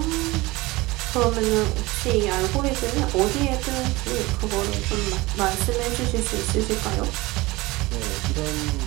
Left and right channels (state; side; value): quieter; left; 21.3 dB